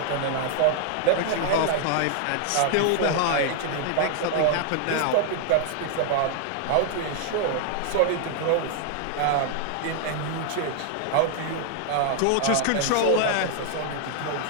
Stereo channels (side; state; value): both; different; correlation 0.00